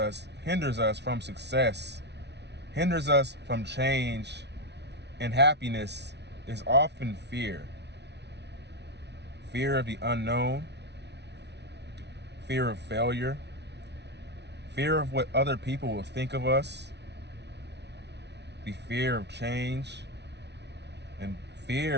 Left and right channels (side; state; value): left; late; 0.50 ms